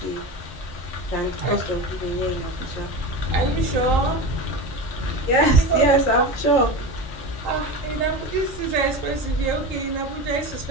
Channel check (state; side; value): normal; both; correlation 0.26